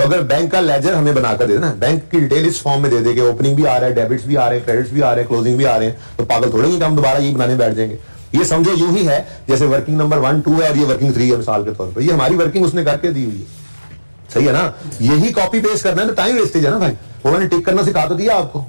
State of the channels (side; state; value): both; inverted; correlation -1.00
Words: अगर बैंक का लेजर हमें बनाकर दे देना, बैंक की डिटेल इस फॉर्म में दे देंगे, ओपनिंग भी आ रहा है, डेबिट्स भी आ रहे हैं, क्रेडिट्स भी आ रहे हैं, क्लोजिंग भी आ रहे हैं, तो पागल थोड़े ही हम दोबारा ये बनाने बैठ जाएंगे। ये समझो यूं ही है जैसे वर्किंग नंबर 1, 2 है और ये वर्किंग 3 है मिसाल के तौर पर, ये हमारी वर्किंग उसने करके दी हुई है, सही है ना। यही कॉपी पेस्ट करना है तो टाइम वेस्टेज है ना भाई, उन्होंने टिक करना सिखा तो दिया आपको,